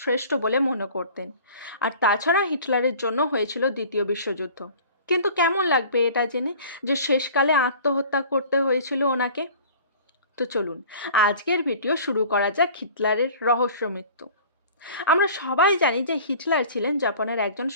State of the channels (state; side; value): inverted; both; correlation -0.45